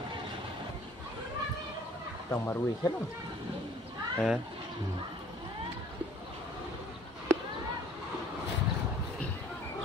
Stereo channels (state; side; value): normal; both; correlation 0.53